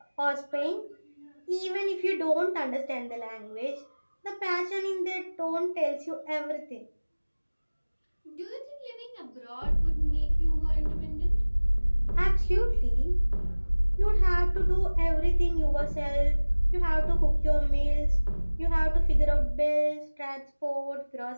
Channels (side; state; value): both; inverted; correlation -1.00